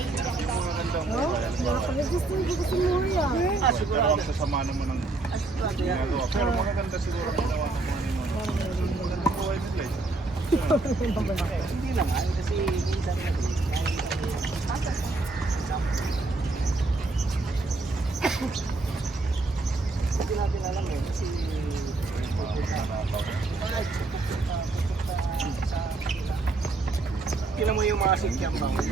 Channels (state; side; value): quieter; left; 3.3 dB